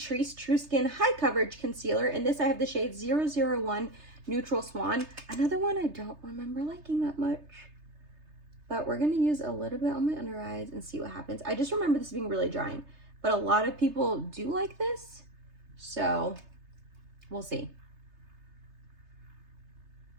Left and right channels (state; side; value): late; left; 3.3 ms